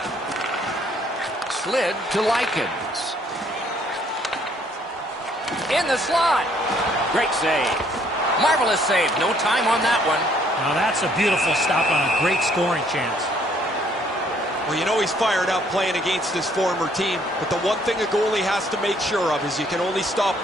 Slid to Likens. In the slot. Great save. Marvelous save. No time on that one. Now that's a beautiful stop on a great scoring chance. Well, you know he's fired up playing against his former team, but the one thing a goalie has to make sure of is you can only stop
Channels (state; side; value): normal; both; correlation 0.64